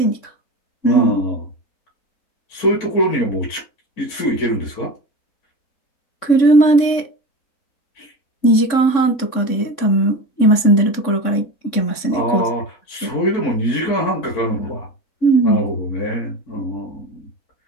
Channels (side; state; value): right; late; 3.6 ms